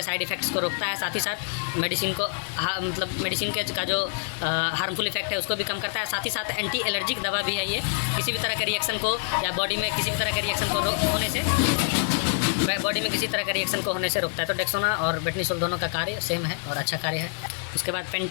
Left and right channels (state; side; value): silent; right; digital silence